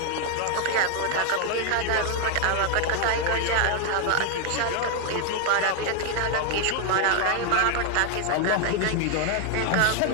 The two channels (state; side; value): different; both; correlation 0.00